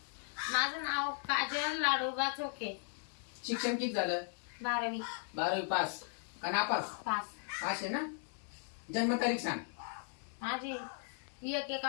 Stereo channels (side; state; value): right; silent; 53 dB below the other